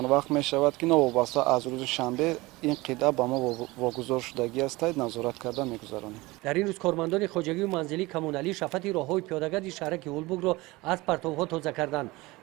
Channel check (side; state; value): left; quieter; 21.5 dB